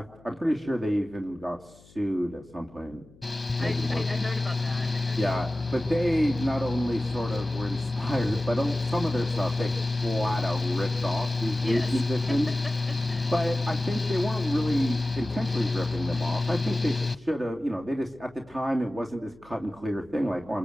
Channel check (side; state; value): left; noise; hum, 26 dB below the sound